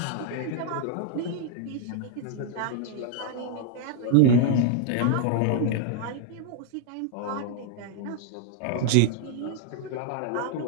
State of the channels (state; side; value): different; both; correlation 0.00